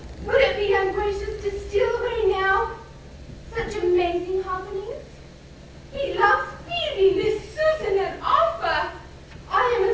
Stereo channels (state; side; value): identical; both; correlation 1.00